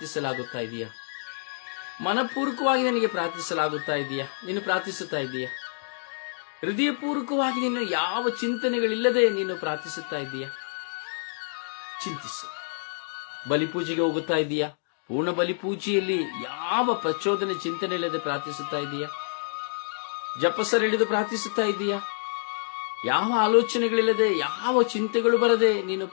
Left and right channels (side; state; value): right; silent; digital silence